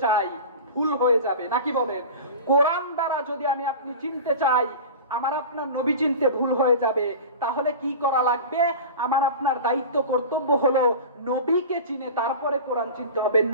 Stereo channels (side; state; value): both; inverted; correlation -0.32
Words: চাই, ভুল হয়ে যাবে, নাকি বলেন? কোরআন দ্বারা যদি আমি আপনি চিনতে চাই, আমার আপনার নবী চিনতে ভুল হয়ে যাবে। তাহলে কি করা লাগবে? আমার আপনার দায়িত্ব, কর্তব্য হলো নবীকে চিনে তারপরে কোরআন চিনতে হবে,